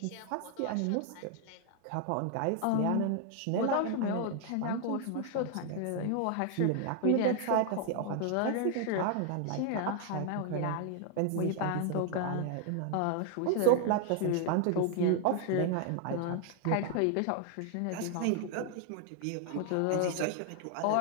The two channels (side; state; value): both; different; correlation 0.00